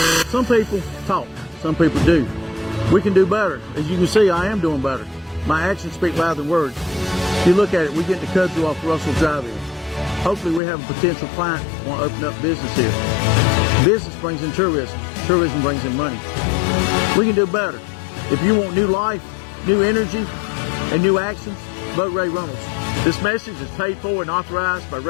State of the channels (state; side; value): drops out; right; at 10.6 s